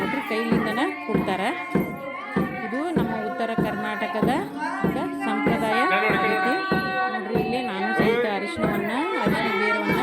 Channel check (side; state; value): both; identical; correlation 1.00